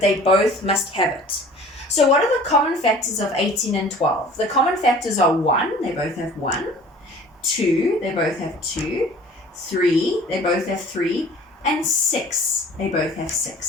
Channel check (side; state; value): both; normal; correlation 0.47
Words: both must have it. So what are the common factors of 18 and 12? The common factors are 1, they both have 1, 2, they both have 2, 3, they both have 3, and 6, they both have